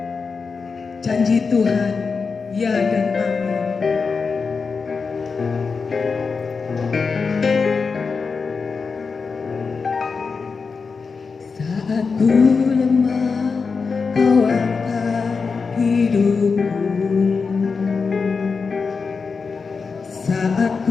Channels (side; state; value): right; quieter; 5.0 dB